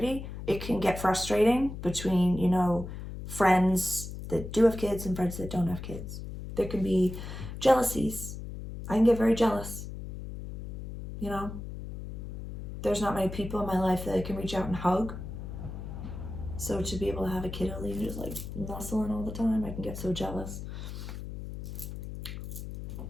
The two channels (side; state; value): left; noise; hum, 9 dB below the sound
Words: it can get frustrating between, you know, friends that do have kids and friends that don't have kids. There can be jealousies. I can get very jealous. You know, there's not many people in my life that I can reach out and hug. So to be able to have a kiddo and just like nuzzling all the time, I can get so jealous.